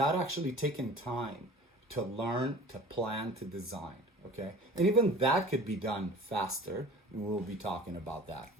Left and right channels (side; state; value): both; normal; correlation 0.43